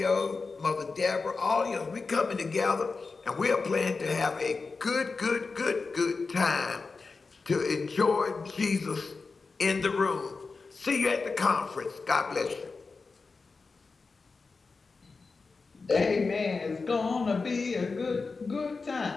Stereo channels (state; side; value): quieter; right; 4.3 dB